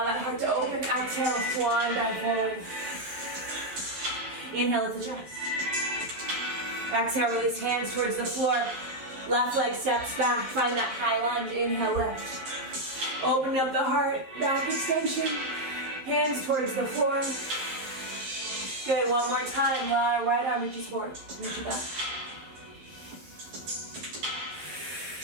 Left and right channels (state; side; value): late; left; 11 ms